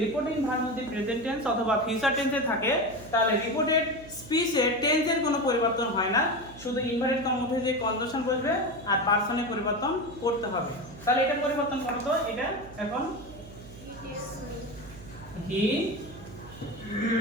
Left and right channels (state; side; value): noise; right; hum, 17 dB below the sound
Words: রিপোর্টিং ভার্ব যদি প্রেজেন্ট টেন্স অথবা ফিউচার টেন্সে থাকে তাহলে রিপোর্টেড স্পিচের টেন্সের কোনো পরিবর্তন হয় না, শুধু ইনভার্টেড কমা উঠে যে কনজাংশন বসবে আর পারসনের পরিবর্তন করতে হবে। তাহলে এটা পরিবর্তন করো তো, এটা এখন he